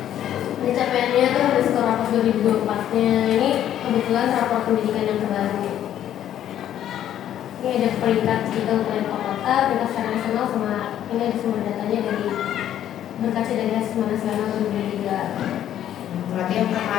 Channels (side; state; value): right; quieter; 11.1 dB